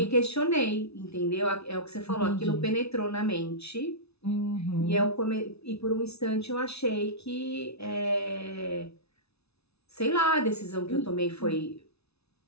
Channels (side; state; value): right; late; 0.80 ms